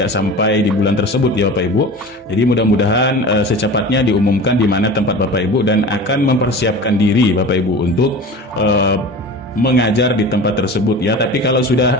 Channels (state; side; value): normal; both; correlation 0.35